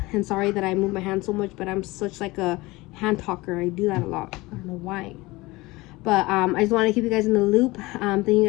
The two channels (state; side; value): quieter; right; 21.4 dB